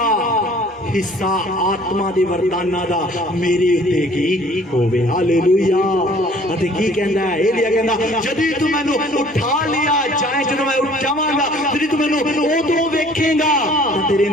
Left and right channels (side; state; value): both; normal; correlation 0.53